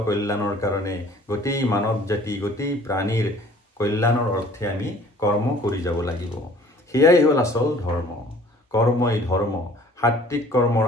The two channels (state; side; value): normal; both; correlation 0.52